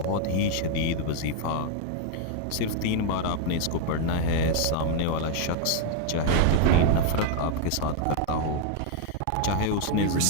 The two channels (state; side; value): different; both; correlation 0.00